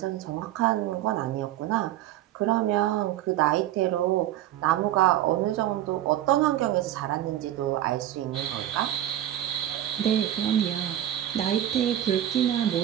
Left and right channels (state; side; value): quieter; left; 12.6 dB